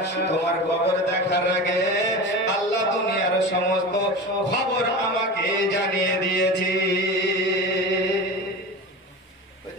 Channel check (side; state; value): both; normal; correlation 0.29